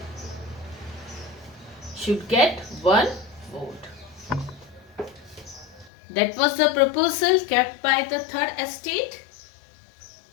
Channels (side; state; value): right; drops out; at 5.9 s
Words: should get one vote. That was the proposal kept by the third estate.